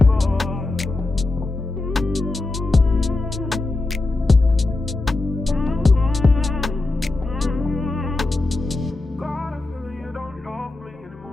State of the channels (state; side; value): quieter; right; 3.1 dB